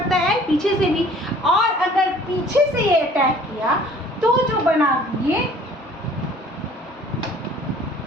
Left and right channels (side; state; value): both; normal; correlation 0.52